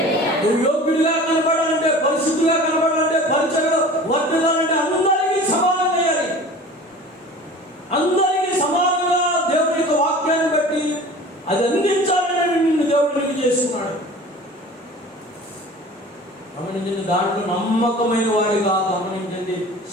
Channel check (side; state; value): both; normal; correlation 0.41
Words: నువ్వు యోగ్యుడిగా కనపడాలంటే, పరిశుద్ధిగా కనపడాలంటే, పరిచయలో వర్తిల్లాలంటే అందరికీ సమానం చేయాలి. అందరికీ సమానంగా దేవుని యొక్క వాక్యాన్ని బట్టి అది అందించాలని నిన్ను దేవుడికి చేసుకున్నాడు. గమనించండి, దాంట్లో నమ్మకమైన వాడిగా గమనించండి.